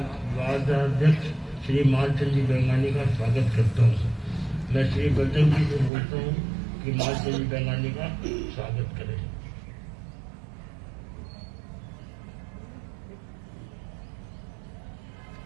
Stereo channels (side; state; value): left; drops out; at 5.9 s